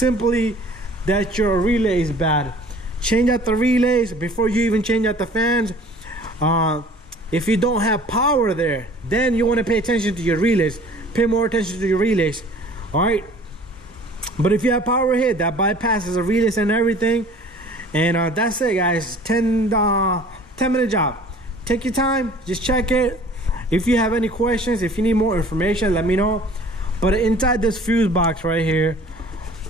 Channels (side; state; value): both; normal; correlation 0.49